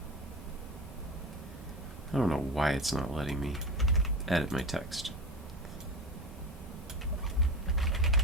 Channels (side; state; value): both; normal; correlation 0.27